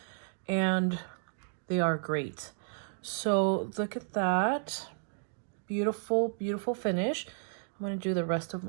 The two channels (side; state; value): left; silent; digital silence